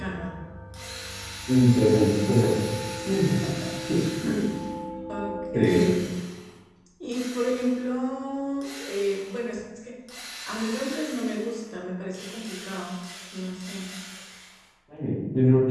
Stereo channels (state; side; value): identical; both; correlation 1.00